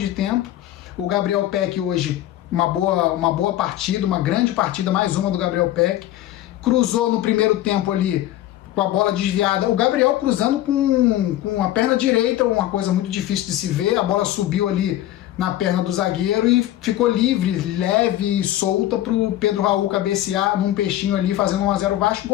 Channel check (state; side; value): quieter; right; 13.8 dB